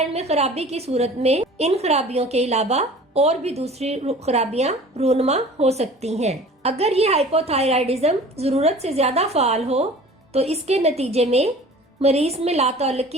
में खराबी की सूरत में इन खराबियों के अलावा और भी दूसरी खराबियां रूनुमा हो सकती हैं। अगर ये हाइपोथायराइडिज्म जरूरत से ज्यादा फाल हो तो इसके नतीजे में मरीज में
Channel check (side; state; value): both; normal; correlation 0.44